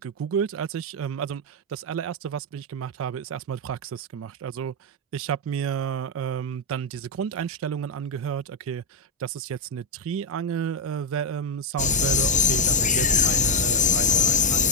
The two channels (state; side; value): normal; both; correlation 0.03